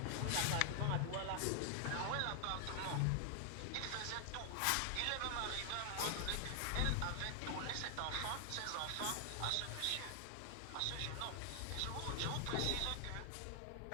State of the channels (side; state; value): both; different; correlation 0.00